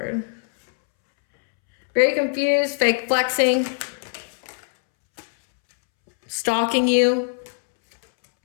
Very confused, fake flexing, stalking you,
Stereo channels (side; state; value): right; silent; 65 dB below the other